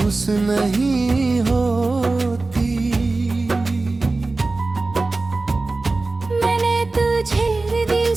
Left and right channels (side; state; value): left; quieter; 3.4 dB